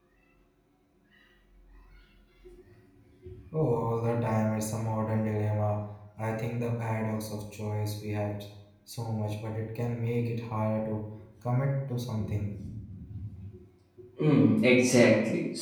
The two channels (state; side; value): identical; both; correlation 1.00